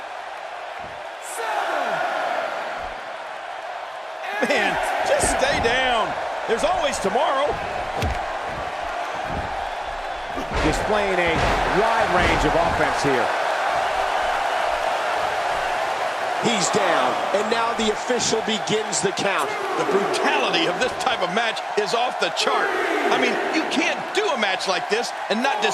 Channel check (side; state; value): both; identical; correlation 1.00